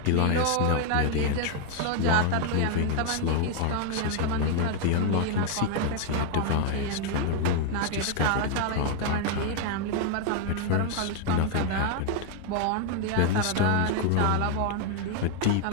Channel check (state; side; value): different; both; correlation 0.01